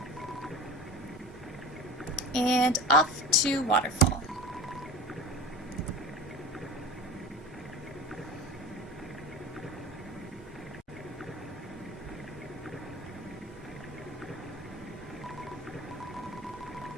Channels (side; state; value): both; normal; correlation 0.33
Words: And off to Waterfall.